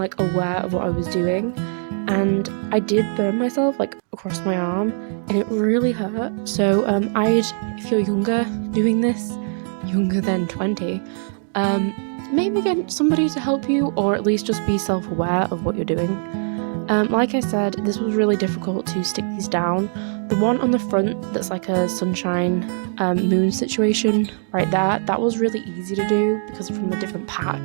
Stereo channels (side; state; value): left; silent; digital silence